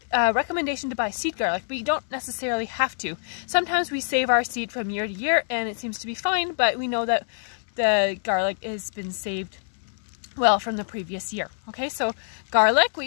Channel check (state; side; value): silent; right; digital silence